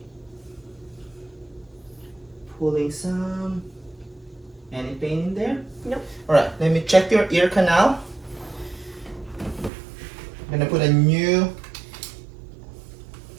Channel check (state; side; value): drops out; left; at 9.7 s